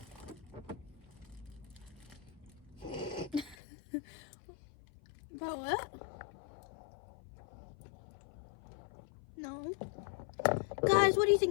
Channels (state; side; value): drops out; right; at 3.6 s